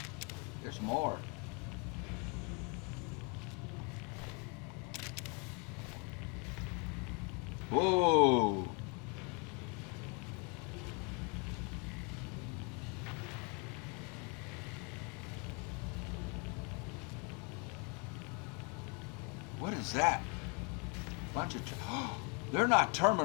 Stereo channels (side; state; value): right; quieter; 32.6 dB